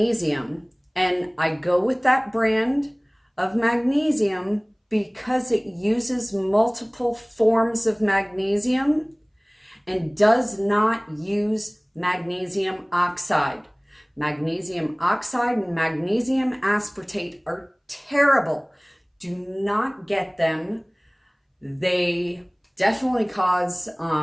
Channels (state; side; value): identical; both; correlation 1.00